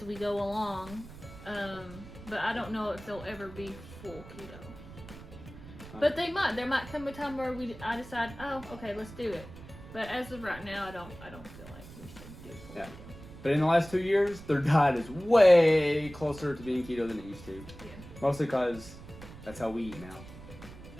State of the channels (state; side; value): noise; right; rumble, 16 dB below the sound